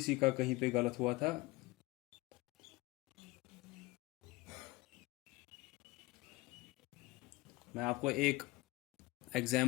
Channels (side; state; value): right; quieter; 21.6 dB